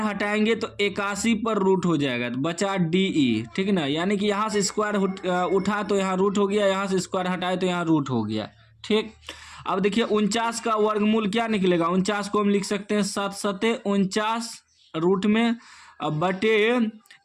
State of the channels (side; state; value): both; identical; correlation 1.00